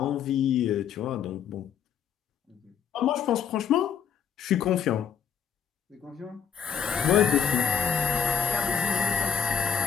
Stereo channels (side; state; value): right; quieter; 7.6 dB